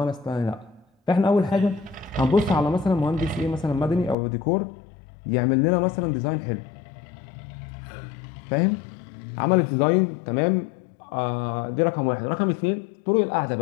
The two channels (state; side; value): drops out; right; at 4.2 s